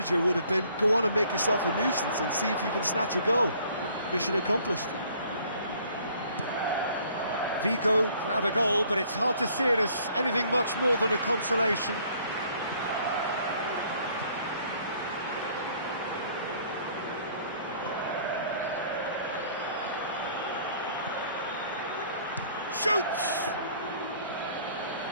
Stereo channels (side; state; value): both; inverted; correlation -0.58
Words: would have been, go on and make yourself a nuisance and see if you can snatch a goal. Mission accomplished. Vigo grab a goal, but it's hard to see it as anything much more than a consolation. Shoots!